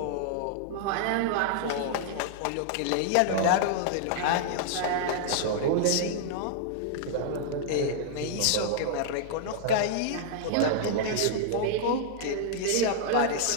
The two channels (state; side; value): different; both; correlation -0.01